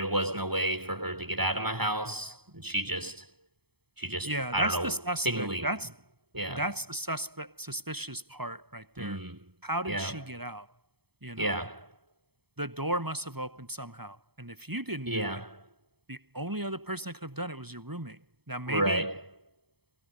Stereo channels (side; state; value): left; late; 0.97 ms